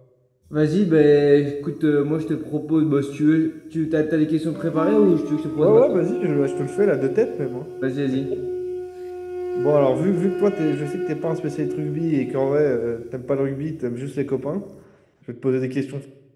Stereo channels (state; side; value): identical; both; correlation 1.00